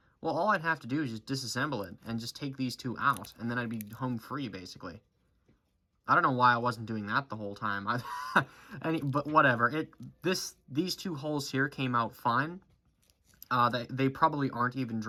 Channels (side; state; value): both; identical; correlation 1.00